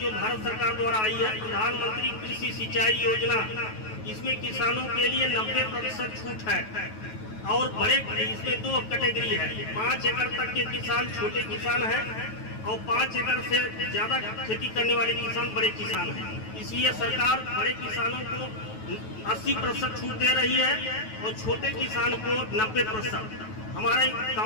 भारत सरकार द्वारा आई है, प्रधानमंत्री कृषि सिंचाई योजना, इसमें किसानों के लिए 90% छूट है। और बड़े इसमें 2 कैटेगरी है, 5 एकड़ तक के किसान छोटे किसान हैं, और 5 एकड़ से ज्यादा खेती करने वाले किसान बड़े किसान हैं। इसलिए सरकार बड़े किसानों को 80% छूट दे रही है और छोटे किसान को 90%। हमारे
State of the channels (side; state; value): right; late; 9.3 ms